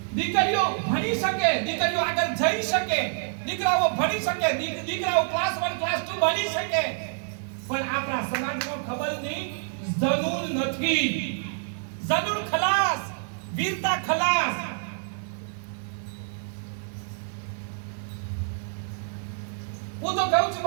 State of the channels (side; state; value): left; silent; digital silence